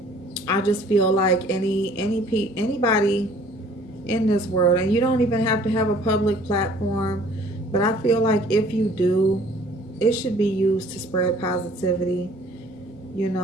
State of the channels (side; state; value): both; normal; correlation 0.54